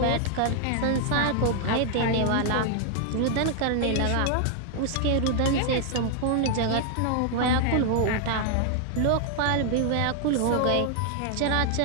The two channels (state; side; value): different; both; correlation 0.00